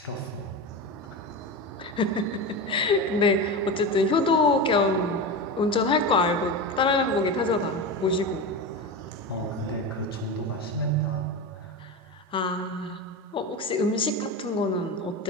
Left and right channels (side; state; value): both; normal; correlation 0.22